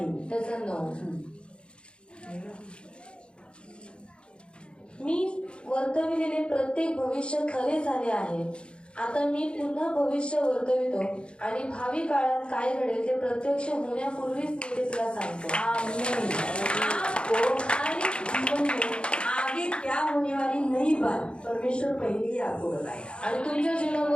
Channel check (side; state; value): right; late; 0.055 ms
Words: त्याचं 9. मी वर्तविलेले प्रत्येक भविष्य खरे झाले आहे. आता मी पुन्हा भविष्य वर्तवितो आणि भावी काळात काय घडेल ते प्रत्यक्ष होण्यापूर्वीच मी ते तुला सांगतो. आमीन. आपको हर एक जीवन में आगे क्या होने वाली नई बात परमेश्वर पहले ही आपको बताएगा. आणि तुमच्या